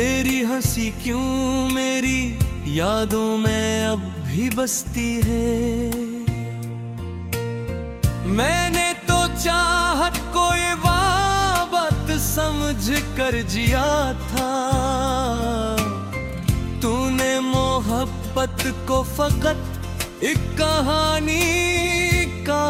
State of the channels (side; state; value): both; identical; correlation 1.00